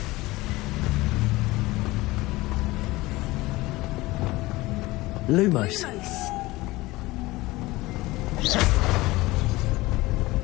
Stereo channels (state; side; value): quieter; right; 20.0 dB